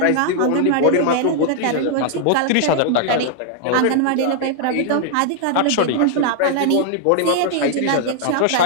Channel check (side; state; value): both; different; correlation -0.01